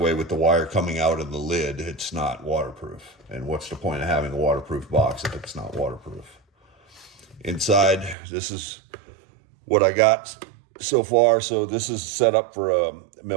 with the wire coming out of the lid, it's not waterproof. And what's the point of having a waterproof box if it's not waterproof? Inside, this is what I got so far. So this is set up for a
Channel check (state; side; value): drops out; left; at 8.2 s